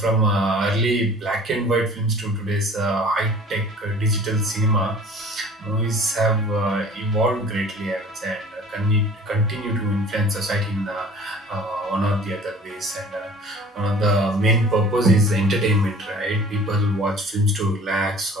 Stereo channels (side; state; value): both; normal; correlation 0.48